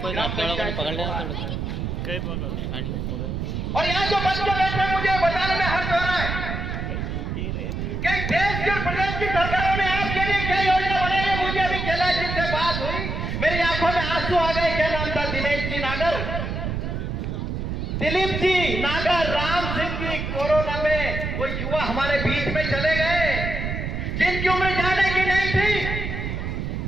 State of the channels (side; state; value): right; noise; rumble, 3 dB below the sound